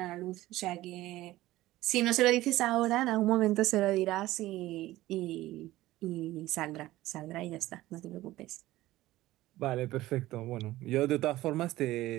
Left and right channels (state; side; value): quieter; left; 16.6 dB